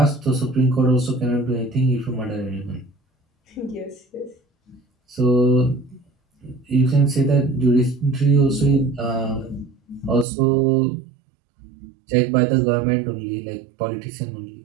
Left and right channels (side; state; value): left; drops out; at 10.2 s